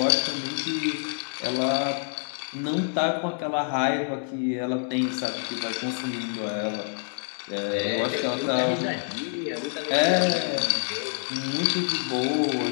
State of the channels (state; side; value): silent; right; 57 dB below the other